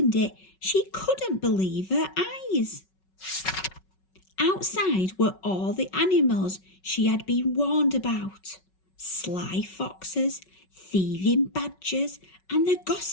it, she couldn't believe her eyes. Outside were all the animals she had been warned about. Sly foxes, thieving badgers, and the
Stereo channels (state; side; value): late; right; 5.4 ms